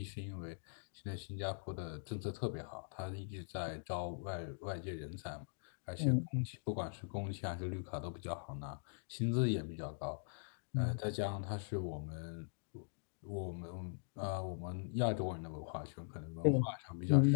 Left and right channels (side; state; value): right; silent; digital silence